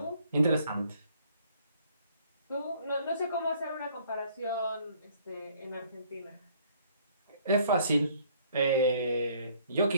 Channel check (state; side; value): inverted; both; correlation -0.61